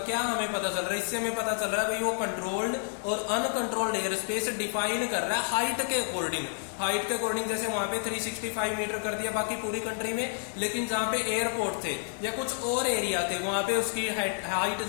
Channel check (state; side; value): silent; right; digital silence